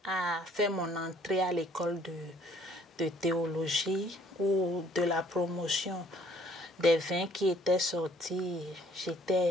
à faire mon entrée à l'école de théologie ou de la promotion des 20 qui étaient sortis.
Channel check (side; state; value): both; normal; correlation 0.61